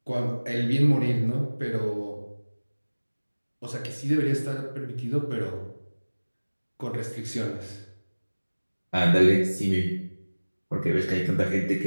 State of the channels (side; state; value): both; inverted; correlation -1.00